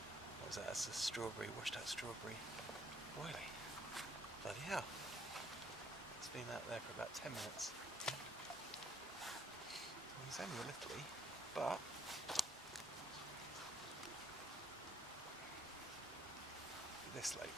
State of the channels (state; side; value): normal; both; correlation 0.65